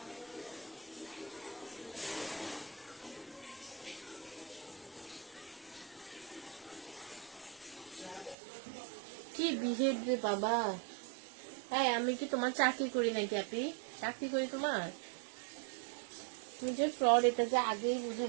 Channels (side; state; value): left; drops out; at 8.3 s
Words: কি বিহেভ রে বাবা! হ্যাঁ, আমি কি তোমার চাকরি করি নাকি আপনি? চাকরি করি তোমার? তুমি যে ফ্রড, এটা যে আগেই বুঝে